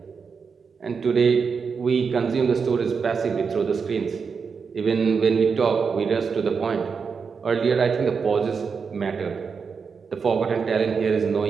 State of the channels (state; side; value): quieter; left; 5.6 dB